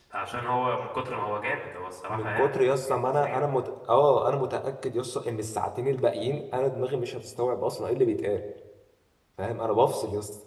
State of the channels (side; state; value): both; identical; correlation 1.00